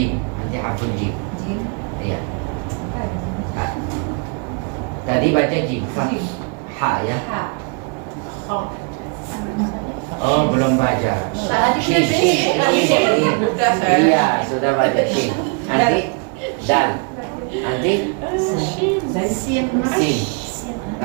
Nanti harful jim. Iya. Tadi baca jim. Ha ya. Oh, belum baca. Shin. Iya, sudah baca shin. Nanti dal. Nanti sin.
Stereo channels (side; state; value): left; quieter; 36.0 dB